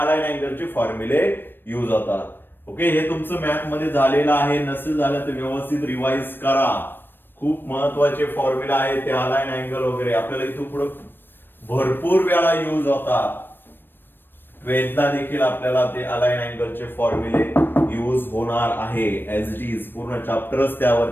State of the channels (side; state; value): right; late; 0.096 ms